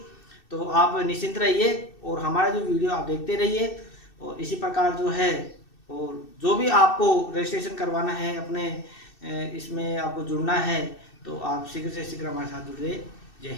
तो आप निश्चिंत रहिए और हमारा जो वीडियो आप देखते रहिए। और इसी प्रकार जो है, और जो भी आपको रजिस्ट्रेशन करवाना है, अपने इसमें आपको जुड़ना है, तो आप शीघ्र से शीघ्र हमारे साथ जुड़िए। जय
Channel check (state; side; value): late; right; 2.6 ms